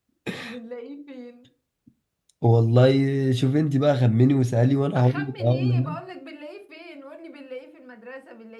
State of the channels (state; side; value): identical; both; correlation 1.00